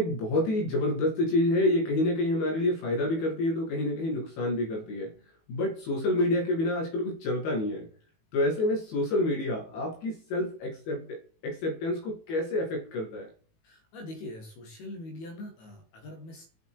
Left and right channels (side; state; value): right; late; 18 ms